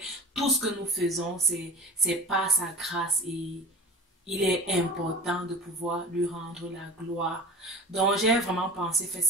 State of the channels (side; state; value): both; normal; correlation 0.35